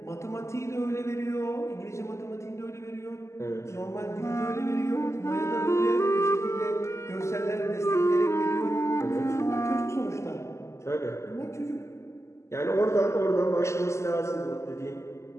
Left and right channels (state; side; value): late; right; 0.13 ms